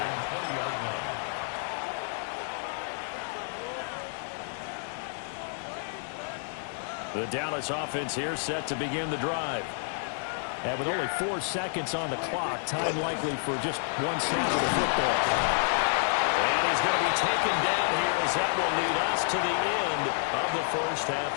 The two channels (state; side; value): silent; right; 56 dB below the other